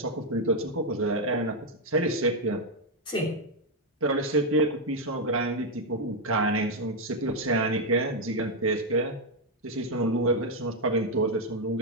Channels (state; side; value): normal; both; correlation 0.01